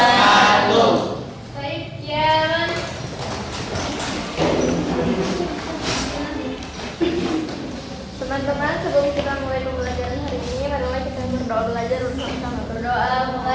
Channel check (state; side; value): identical; both; correlation 1.00